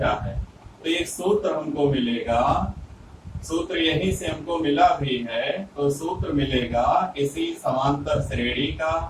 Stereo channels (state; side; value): identical; both; correlation 1.00